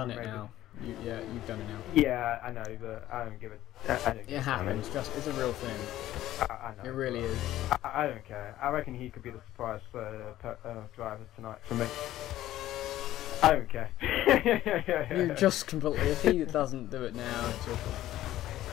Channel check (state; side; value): quieter; right; 14.0 dB